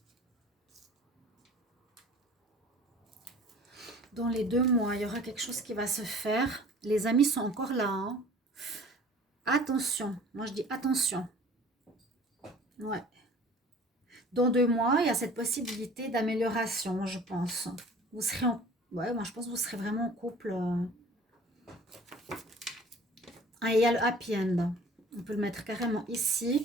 Dans les 2 mois, il y aura quelque chose qui va se faire. Les amis sont encore là. Hein. Attention. Moi, je dis attention. Ouais. Dans 2 mois, il y a cette possibilité d'amélioration, je pense. Vous serez en... Ouais, moi, je pense que vous serez vraiment en couple. Ah, il y a le happy end. On peut le mettre carrément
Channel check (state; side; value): normal; both; correlation 0.48